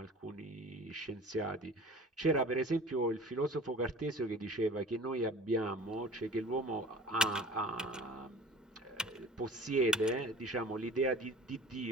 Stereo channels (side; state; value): both; normal; correlation 0.44